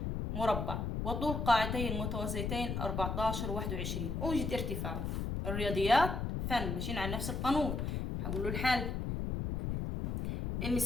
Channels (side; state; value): left; noise; rumble, 2 dB below the sound